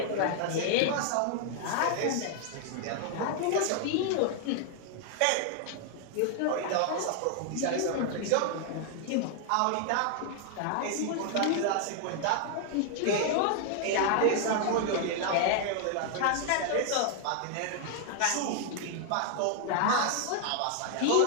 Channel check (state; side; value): different; both; correlation 0.00